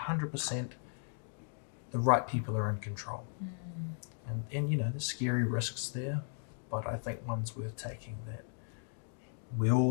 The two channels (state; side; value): silent; right; 54 dB below the other